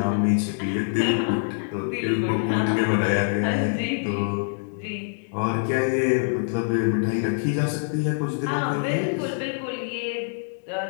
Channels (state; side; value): silent; right; digital silence